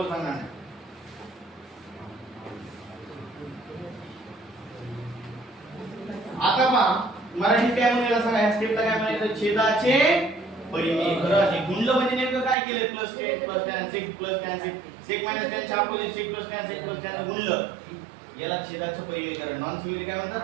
सांगणार नाही. आता पहा मराठीत काय म्हणायला सांगा. ह्या स्टेपला काय म्हणायचं छेदाचे परिमीकरण. हे गुणलं म्हणजे नेमकं काय केलं plus tan sec plus tan sec minus tan च्या अपोजिट सेक प्लस टॅन गुणलं याला छेदाचं परिमीकरण. नॉन सिव्हिल काय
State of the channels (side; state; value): left; drops out; at 12.6 s